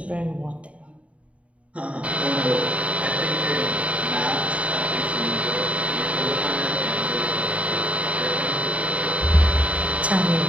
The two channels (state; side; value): late; left; 0.065 ms